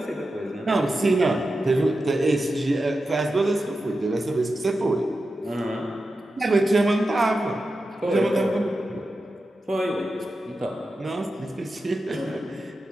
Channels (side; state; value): both; normal; correlation 0.91